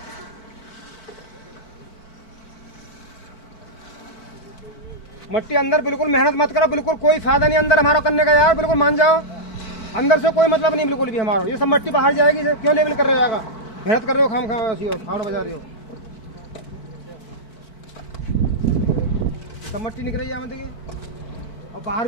मट्टी अंदर बिल्कुल मेहनत मत करो, बिल्कुल कोई फायदा नहीं अंदर हमारा करने का यार, बिल्कुल मान जाओ। अंदर से कोई मतलब नहीं बिल्कुल भी हमारा, ये सब मट्टी बाहर जाएगी, क्यों लेवल कर रहे हो? मेहनत कर रहे हो, खाना बजा रहे हो, सब मट्टी निकल रही है देखिए। और बाहर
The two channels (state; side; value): late; right; 4.5 ms